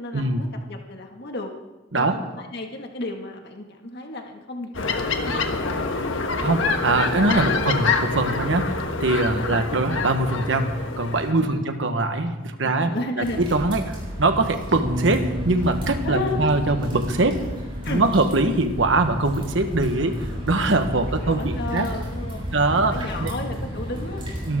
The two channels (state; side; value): normal; both; correlation 0.24